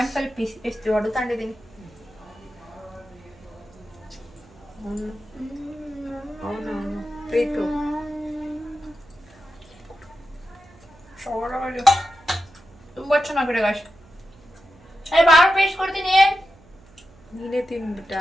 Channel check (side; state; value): right; noise; hum, 26 dB below the sound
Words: ಪೀಸ್ ಎಷ್ಟು ಹೊಡೆತಾಂಡಿದ್ದೀನಿ. ಪ್ರೀತು ತುಂಬಾ ಚೆನ್ನಾಗಿದೆ ಗಾಶ್. ಬಾಳ ಪೇಸ್ಟ್ ಕೊಡ್ತೀನಿ. ನೀನೇ ತಿನ್ಬಿಟ್ಟ,